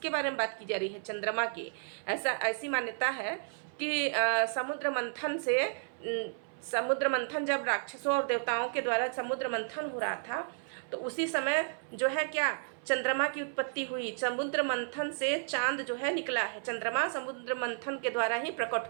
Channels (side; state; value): left; silent; 56 dB below the other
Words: बारे में बात की जा रही है? चंद्रमा की। ऐसी मान्यता है कि समुद्र मंथन जब राक्षसों और देवताओं के द्वारा समुद्र मंथन हो रहा था तो उसी समय जो है क्या चंद्रमा की उत्पत्ति हुई। समुद्र मंथन से चांद जो है निकला है, चंद्रमा समुद्र मंथन के द्वारा ही प्रकट